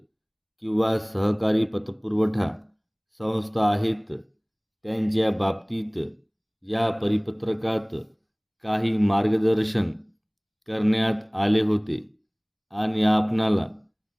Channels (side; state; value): both; identical; correlation 1.00